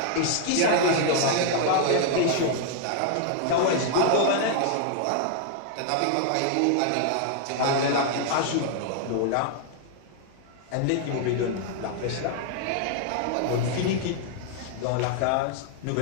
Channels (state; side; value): different; both; correlation 0.00